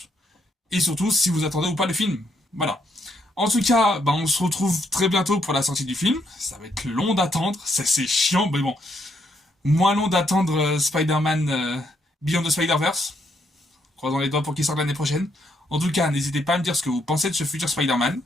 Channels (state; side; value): normal; both; correlation 0.74